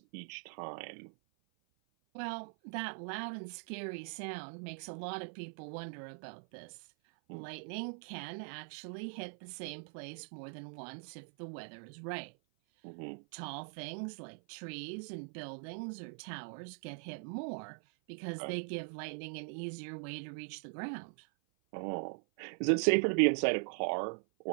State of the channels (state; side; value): silent; left; 50 dB below the other